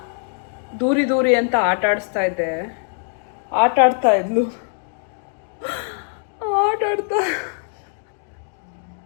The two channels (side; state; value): right; silent; digital silence